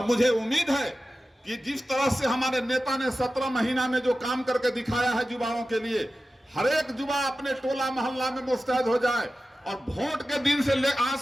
मुझे उम्मीद है कि जिस तरह से हमारे नेता ने 17 महीना में जो काम करके दिखाया है युवाओं के लिए, हर एक युवा अपने टोला मोहल्ला में मुस्तैद हो जाए और वोट के दिन से आज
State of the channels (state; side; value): normal; both; correlation 0.94